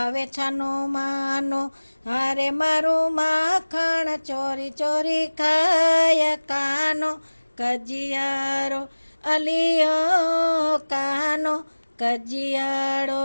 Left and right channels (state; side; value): inverted; both; correlation -1.00